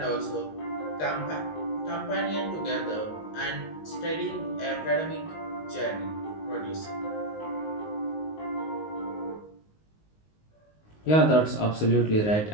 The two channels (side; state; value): right; late; 19 ms